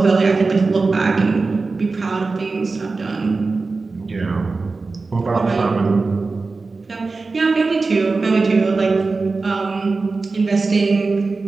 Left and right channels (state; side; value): quieter; left; 3.9 dB